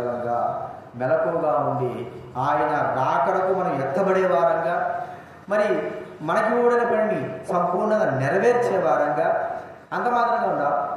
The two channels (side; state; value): both; identical; correlation 1.00